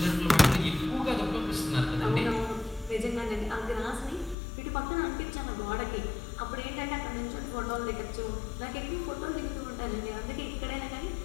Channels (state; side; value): drops out; right; at 4.4 s